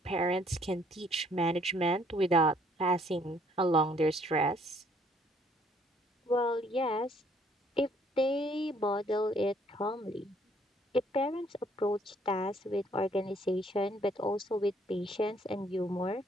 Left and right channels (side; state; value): both; normal; correlation 0.64